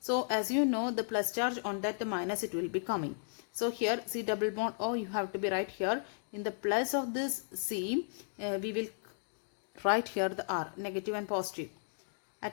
as you know, the plus charge on that, the minus it will be coming. So here C double bond O, you have to be right here in the plus of this C, we will write here the R, negative and positive,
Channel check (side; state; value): right; silent; digital silence